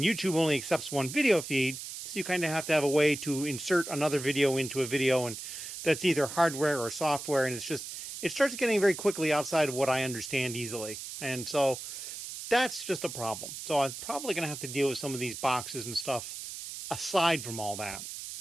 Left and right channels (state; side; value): noise; right; hiss, 9 dB below the sound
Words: YouTube only accepts one video feed, so you kind of have to have a way to insert another video into a video, and that's either hardware or software, and it starts getting very quickly outside of what I understand easily. And so that's just a problem. So I'm probably going to have to deal with some of these boxes and stuff aside from all that.